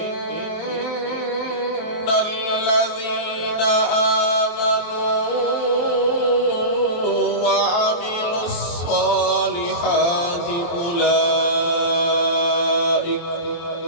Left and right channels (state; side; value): late; right; 23 ms